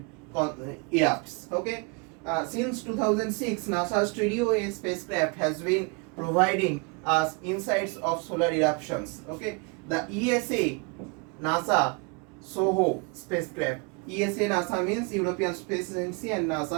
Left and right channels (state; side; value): quieter; left; 31.5 dB